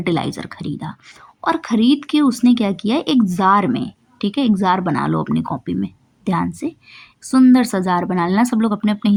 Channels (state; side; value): identical; both; correlation 1.00